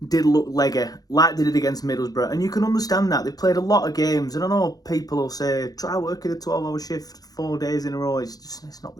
did look leggy, like they did against Middlesbrough, and you can understand that. They played a lot of games, and I know people will say, try working a 12-hour shift 4 days in a row. It's not the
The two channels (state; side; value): late; right; 0.18 ms